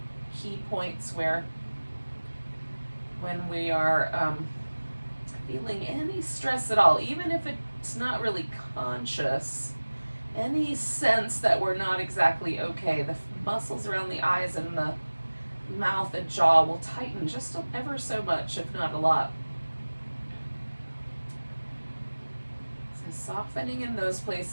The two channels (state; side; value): inverted; both; correlation -1.00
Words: key points where when we are feeling any stress at all, even if it's not really conscious, any sense that we're not exactly okay, the muscles around the eyes and the mouth and jaw will tighten just ever so much, if not a lot. So softening in those